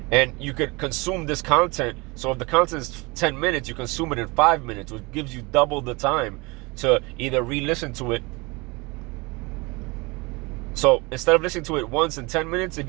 And you could consume this content. So if the content is 10 minutes, you consume it in 5 minutes, which gives you double the time to either re-listen to it. So instead of listening to it once in 10 minutes, if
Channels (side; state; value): left; quieter; 26.0 dB